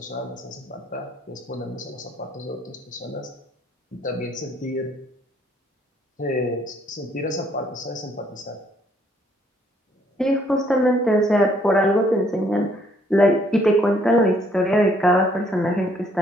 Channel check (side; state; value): both; normal; correlation 0.65